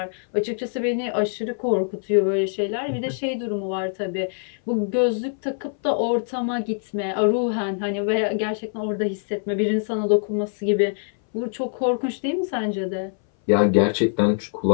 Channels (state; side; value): silent; right; 59 dB below the other